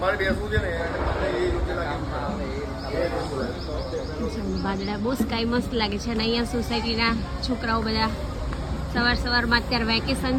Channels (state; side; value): identical; both; correlation 1.00